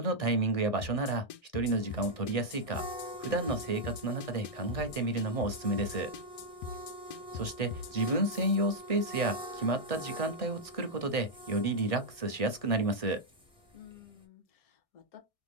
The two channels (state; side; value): late; right; 1.6 ms